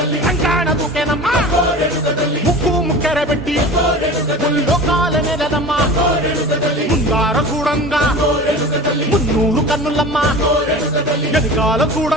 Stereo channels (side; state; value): both; normal; correlation 0.36